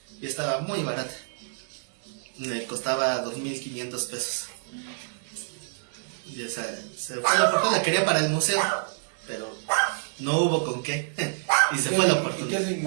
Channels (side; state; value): left; silent; digital silence